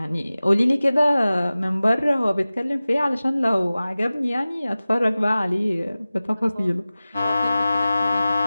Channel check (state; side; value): inverted; both; correlation -0.97